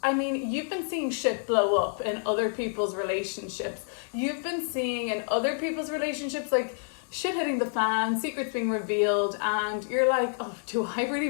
mean, you've been seeing shit blow up in other people's relationships. You've been seeing in other people's relationships, like, shit hitting the fan, secrets being revealed, and you're like, oh, do I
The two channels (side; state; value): right; silent; digital silence